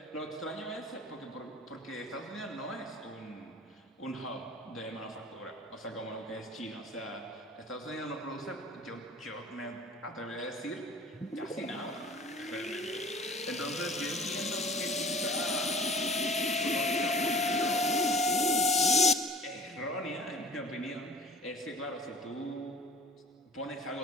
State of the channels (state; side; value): normal; both; correlation 0.45